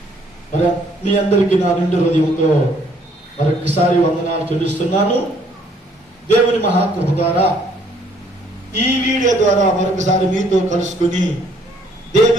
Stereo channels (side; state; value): both; normal; correlation 0.64